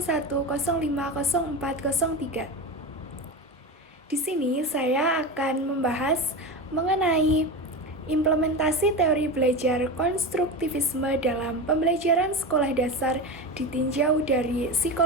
Di sini saya akan membahas mengenai implementasi teori belajar konstruktivisme dalam pembelajaran sekolah dasar ditinjau dari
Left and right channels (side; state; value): both; normal; correlation 0.23